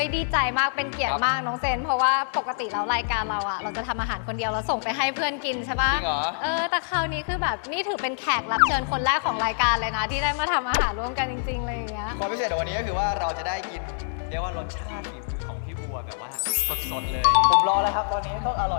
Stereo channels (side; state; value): right; silent; digital silence